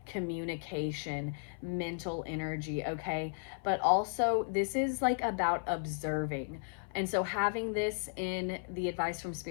communication, mental energy, okay? But also this is like about observing. And so having this in the advice from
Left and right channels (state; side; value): silent; right; 55 dB below the other